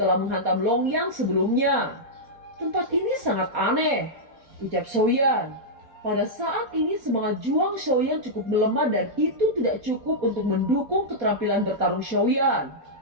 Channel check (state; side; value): late; left; 4.2 ms